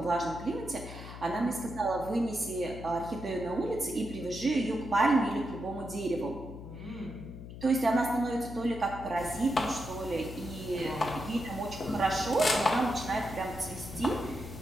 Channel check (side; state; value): left; noise; hum, 12 dB below the sound